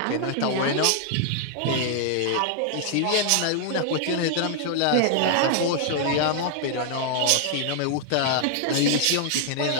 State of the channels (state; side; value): different; both; correlation 0.00